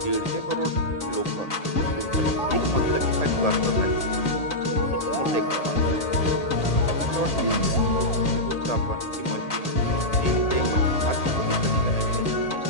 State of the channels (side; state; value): right; late; 1.8 ms